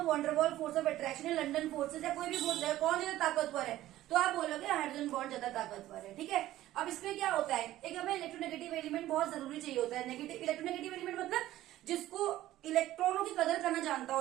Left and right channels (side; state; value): left; quieter; 14.7 dB